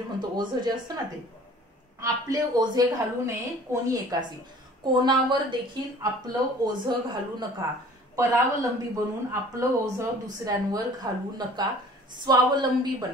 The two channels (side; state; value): both; normal; correlation 0.49